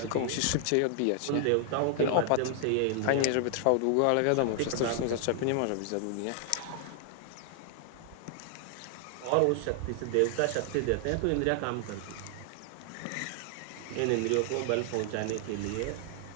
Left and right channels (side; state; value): both; different; correlation 0.00